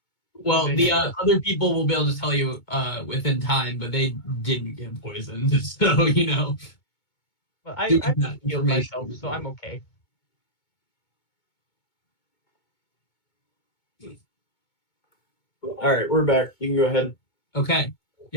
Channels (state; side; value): late; right; 2.2 ms